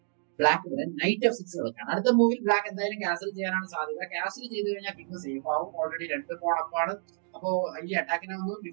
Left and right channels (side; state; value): left; silent; digital silence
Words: ബ്ലാക്ക് ഇവിടെ നൈറ്റ് F6 കളിക്കാണ്. അടുത്ത മൂവിൽ ബ്ലാക്ക് എന്തായാലും ക്യാൻസൽ ചെയ്യാനാണ് സാധ്യത. ക്യാൻസൽ ചെയ്ത് കഴിഞ്ഞാൽ കിങ് സേഫ് ആവും. ഓൾറെഡി 2 പോണപ്പാണ്. അപ്പോ ഈ അറ്റാക്കിനെ ഒന്ന്